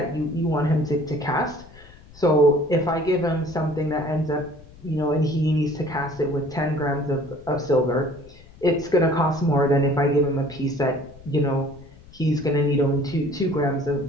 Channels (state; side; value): noise; left; rumble, 22 dB below the sound